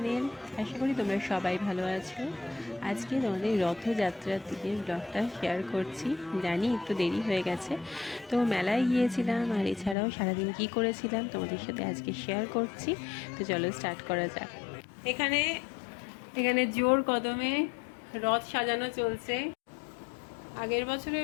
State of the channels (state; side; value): drops out; right; at 10.0 s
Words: আশা করি তোমরা সবাই ভালো আছো। আজকে তোমাদের রথযাত্রার দিনের ব্লগটা শেয়ার করছি। জানি একটু দেরি হয়ে গেছে, তো মেলায় গিয়েছিলাম আর এছাড়াও সারাদিন কি করেছিলাম তোমাদের সাথে আজকে শেয়ার করছি। তো চলো স্টার্ট করা যাক। এখানে এখানে জোর কদমে রথ সাজানো চলছে। আগের